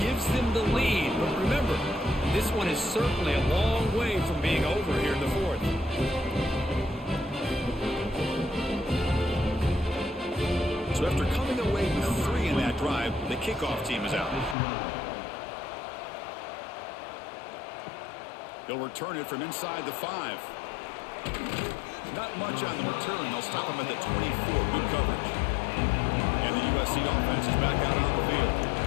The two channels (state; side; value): drops out; right; at 14.6 s